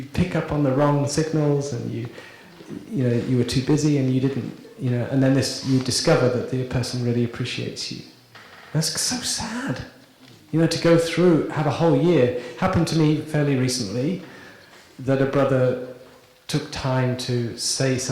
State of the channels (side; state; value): both; identical; correlation 1.00